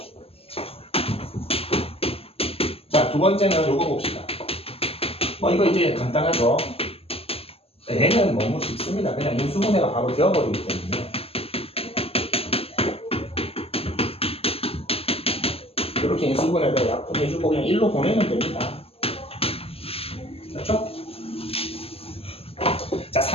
자, 두 번째는 요거 봅시다. 이거 이제 간단하죠? 얘는 너무 쉽습니다. 그냥 인수분해가 바로 되어버리기 때문에. 이렇게 인수분해를 약분해주고 그냥 1로 보내면 됩니다. 그렇죠? 자,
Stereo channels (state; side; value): late; right; 0.28 ms